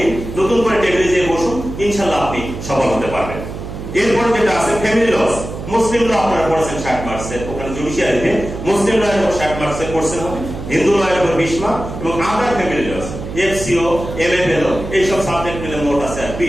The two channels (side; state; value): right; noise; hum, 9 dB below the sound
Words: নতুন করে টেবিলে যেয়ে বসুন, ইনশাল্লাহ আপনি সফল হতে পারবেন। এরপর যেটা আছে ফ্যামিলি লস, মুসলিম ল আপনারা পড়েছেন 60 মার্কসের, ওখানে জুডিশিয়ারিতে মুসলিম ল এর উপর 60 মার্কসের কোশ্চেন হবে, হিন্দু ল এর উপর 20 মার্ক এবং আদার ফ্যামিলি লস, এফসিও, এমএফএল, এই সব সাবজেক্ট মিলে মোট আছে